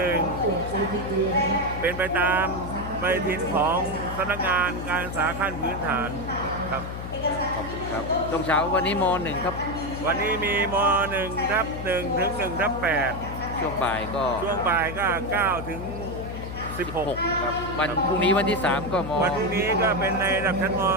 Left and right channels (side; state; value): left; noise; hum, 8 dB below the sound